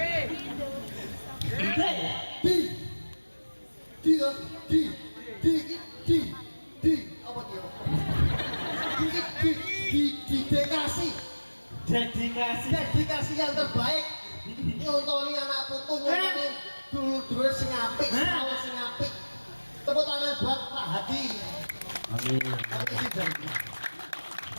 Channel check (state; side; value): inverted; both; correlation -1.00